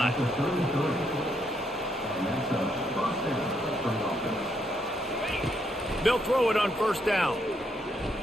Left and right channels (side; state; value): both; normal; correlation 0.75